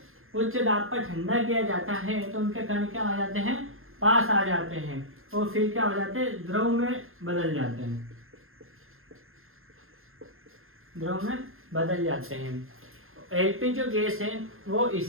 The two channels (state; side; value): late; left; 0.61 ms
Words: उच्च दाब पर ठंडा किया जाता है तो उनके कण क्या आ जाते हैं, पास आ जाते हैं, और फिर क्या हो जाते हैं, द्रव में बदल जाते हैं। एलपी जो गैस है वो